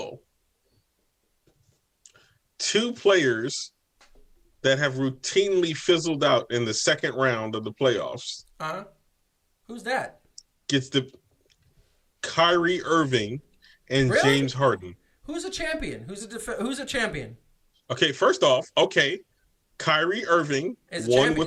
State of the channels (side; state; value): both; identical; correlation 1.00